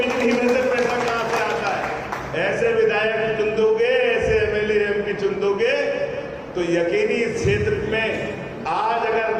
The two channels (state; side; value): identical; both; correlation 1.00